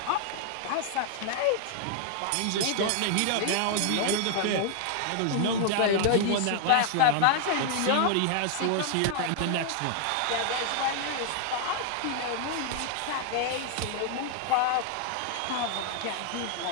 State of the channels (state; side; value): different; both; correlation 0.00